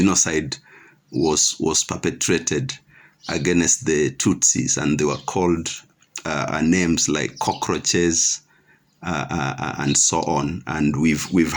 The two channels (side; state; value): both; identical; correlation 1.00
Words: was perpetrated against the Tutsis, and they were called names like cockroaches, and so on. And we've